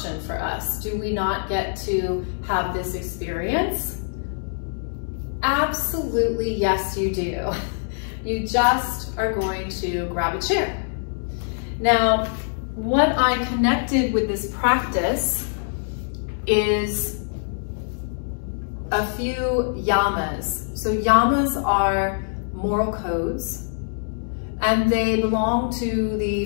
for us. Do we not get to have this experience? Absolutely, yes, you do. You just are going to grab a chair. Now, what I connected with this practice is a few yamas. So yamas are moral codes, and they belong to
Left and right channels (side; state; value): right; silent; digital silence